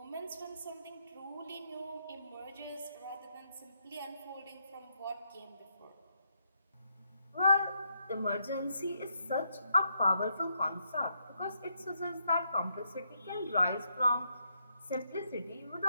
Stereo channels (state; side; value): inverted; both; correlation -0.78